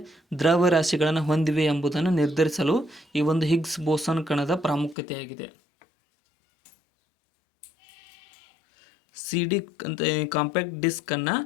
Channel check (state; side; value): drops out; right; at 5.0 s